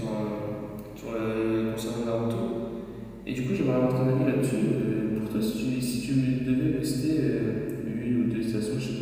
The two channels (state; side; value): identical; both; correlation 1.00